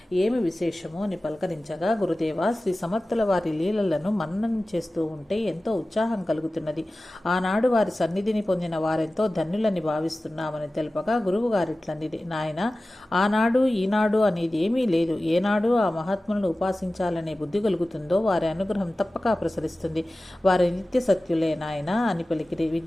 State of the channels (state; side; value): normal; both; correlation 0.96